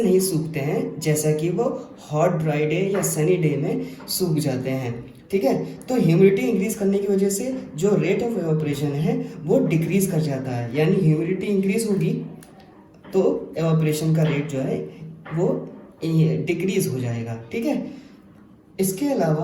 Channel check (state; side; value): identical; both; correlation 1.00